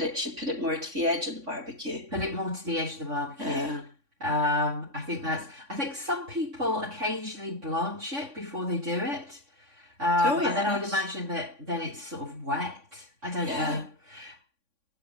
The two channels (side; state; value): left; late; 3.6 ms